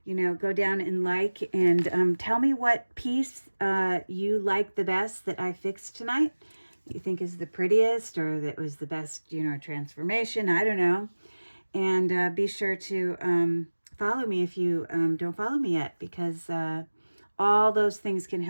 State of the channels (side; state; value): both; inverted; correlation -1.00